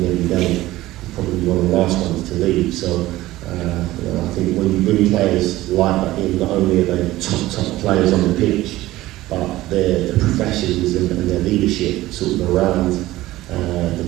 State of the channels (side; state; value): left; quieter; 16.8 dB